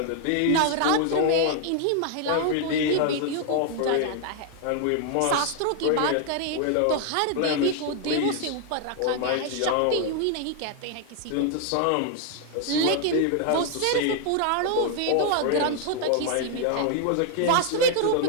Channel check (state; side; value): different; both; correlation 0.00